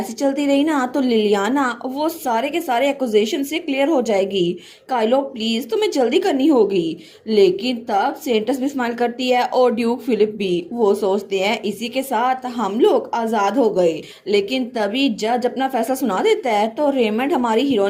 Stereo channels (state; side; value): identical; both; correlation 1.00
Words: चलती रही ना तो लिलियाना वो सारे के सारे एक्यूजेशन से क्लियर हो जाएगी। काइलो प्लीज तुम्हें जल्दी करनी होगी। लेकिन तब सेंटस भी स्माइल करती है और ड्यूक फिलिप भी। वो सोचते हैं इसी के साथ हम लोग आजाद हो गए। लेकिन तभी जज अपना फैसला सुना देता है तो रेमंड हमारी